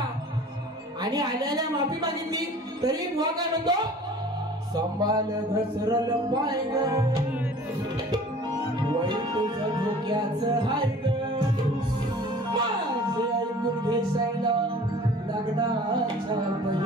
आणि आल्याला माफी मागितली तरी बुवा काय म्हणतो संभाल घसरल पाय ग वय तुझं धोक्याचं हाय ग माझे ऐकून घेशायला लग्नाच्या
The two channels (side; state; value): both; normal; correlation 0.46